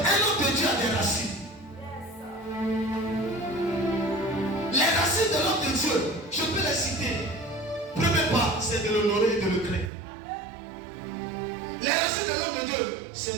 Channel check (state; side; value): drops out; left; at 9.9 s